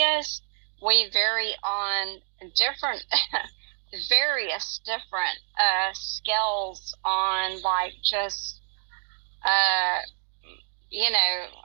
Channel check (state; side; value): silent; left; 58 dB below the other